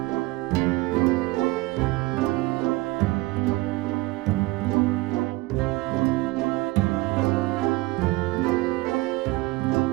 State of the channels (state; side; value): quieter; left; 21.2 dB